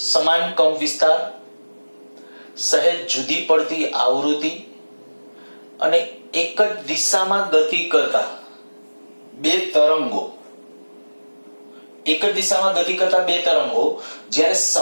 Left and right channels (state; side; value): inverted; both; correlation -1.00